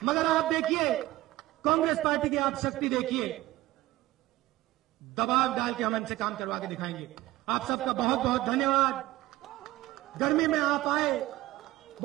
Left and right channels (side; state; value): left; quieter; 17.2 dB